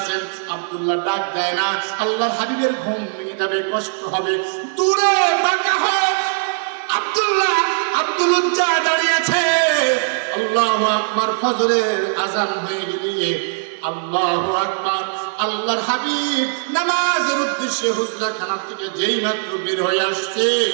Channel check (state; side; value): silent; left; 64 dB below the other